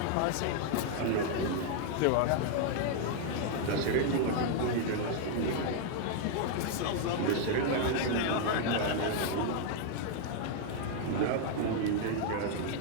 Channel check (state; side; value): different; both; correlation 0.00